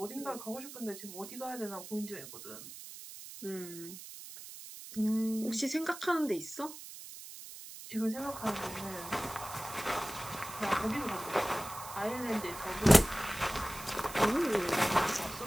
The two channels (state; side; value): noise; right; hiss, 13 dB below the sound